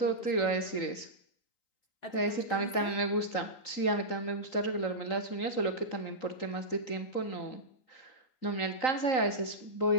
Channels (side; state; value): right; late; 3.9 ms